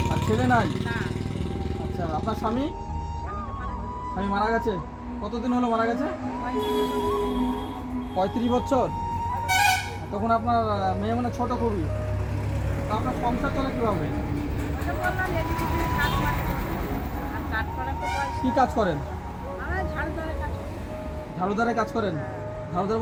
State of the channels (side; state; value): both; identical; correlation 1.00